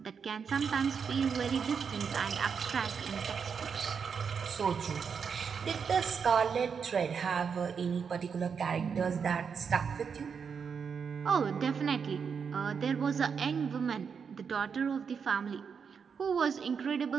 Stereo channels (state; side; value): quieter; left; 6.3 dB